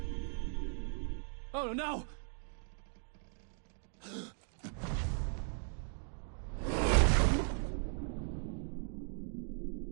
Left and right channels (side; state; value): left; silent; 52 dB below the other